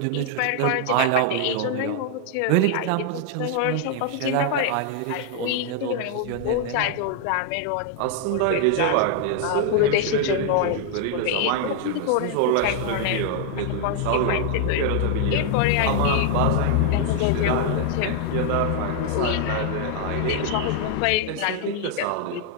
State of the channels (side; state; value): both; different; correlation 0.00